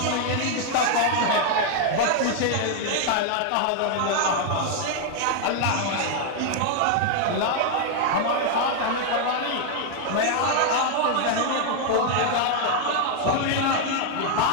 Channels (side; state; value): both; different; correlation 0.00